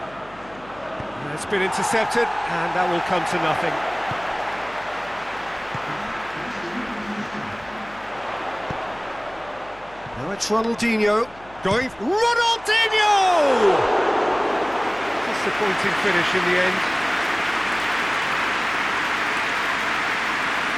It's been intercepted, and that will come to nothing. Now it's Ronaldinho going... Ronaldinho! Disappointing finish in the end.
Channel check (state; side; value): noise; left; hum, 24 dB below the sound